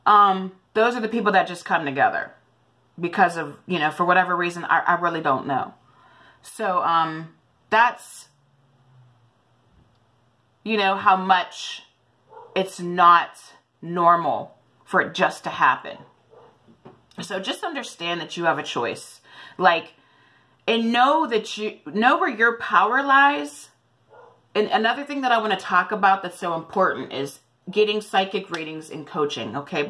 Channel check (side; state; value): both; identical; correlation 1.00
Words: those are the people that just come together because of, you know, for whatever reason, I really don't know. So, that's, you know, how much it's not normal for it just to happen. So just understand that you have a choice. Like, and know that you know where your power lies. And another thing that I want to talk about that's so important is getting psychic readings and coaching. Okay.